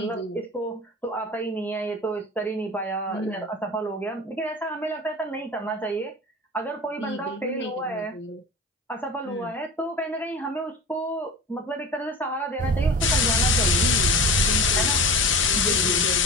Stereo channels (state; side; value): normal; both; correlation 0.34